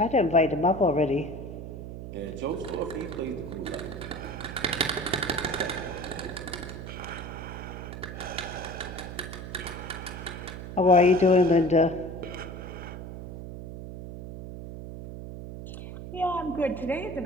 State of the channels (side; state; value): right; noise; hum, 9 dB below the sound